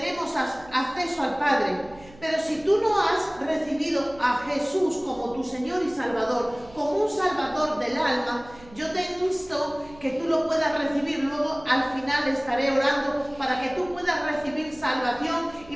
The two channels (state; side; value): noise; right; hum, 22 dB below the sound